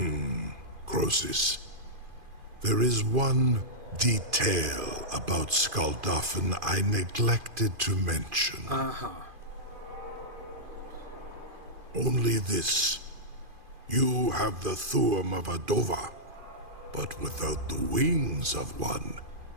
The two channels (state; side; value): late; left; 2.4 ms